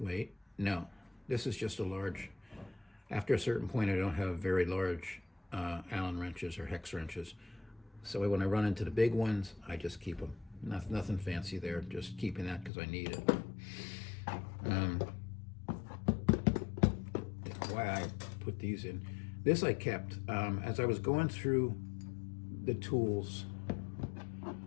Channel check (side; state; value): right; drops out; at 12.7 s